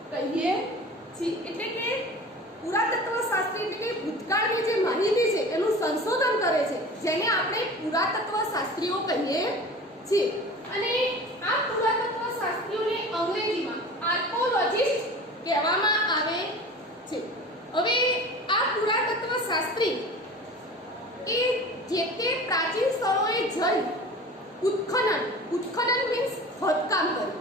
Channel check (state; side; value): normal; both; correlation 0.38